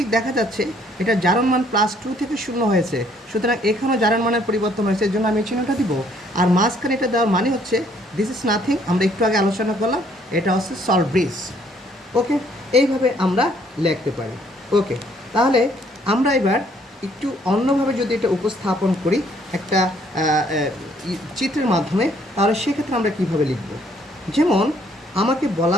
দেখা যাচ্ছে এটা জারণ মান +2 থেকে 0 হয়েছে, সুতরাং এখানেও জারণ মানের পরিবর্তন হয়েছে, এর জন্য আমি চিহ্নটা দিব। আর মাঝখানে এটা দেওয়ার মানে হচ্ছে দিস ইজ নাথিং, আমরা একটু আগে আলোচনা করলাম, এটা হচ্ছে সল্ট ব্রিজ। ওকে, এইভাবে আমরা লিখতে পারি। ওকে, তাহলে আমরা এবার একটু অন্যভাবে যদি এটা উপস্থাপন করি একটা চিত্রের মাধ্যমে, তাহলে সেক্ষেত্রে আমরা কীভাবে লিখব। যেমন আমাকে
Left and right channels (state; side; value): normal; both; correlation 0.64